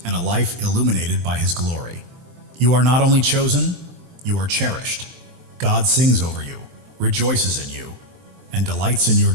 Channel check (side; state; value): left; late; 23 ms